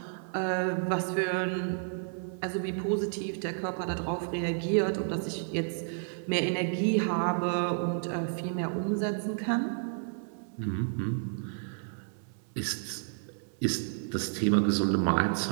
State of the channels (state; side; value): silent; left; 57 dB below the other